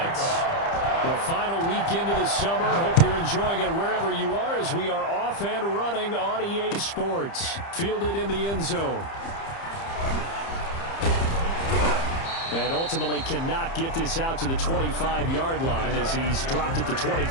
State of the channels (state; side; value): late; right; 30 ms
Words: The final weekend of the summer. Hope you're enjoying it wherever you are as we are off and running on EA Sports. Fielded in the end zone. And ultimately cannot get this out to the 25-yard line as he's dropped at the